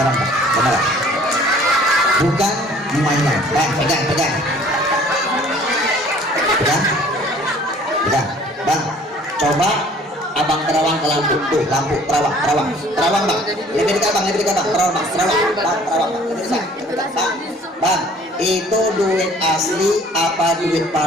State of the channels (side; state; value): both; normal; correlation 0.54